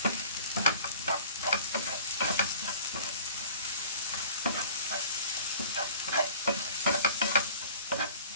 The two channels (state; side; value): inverted; both; correlation -0.47